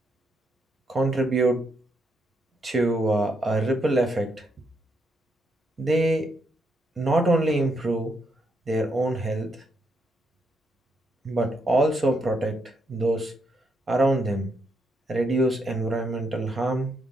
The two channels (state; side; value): normal; both; correlation 0.78